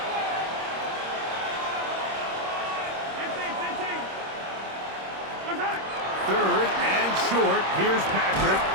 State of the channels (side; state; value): left; late; 26 ms